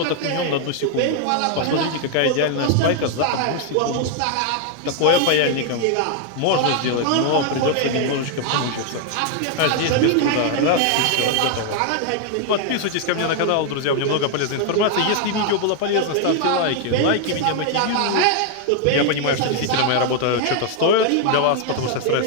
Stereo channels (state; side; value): different; both; correlation 0.00